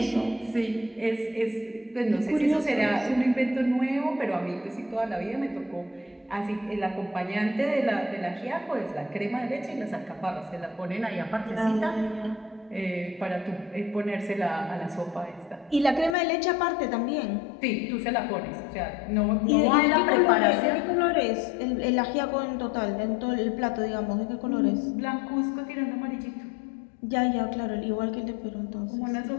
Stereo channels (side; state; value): right; drops out; at 16.2 s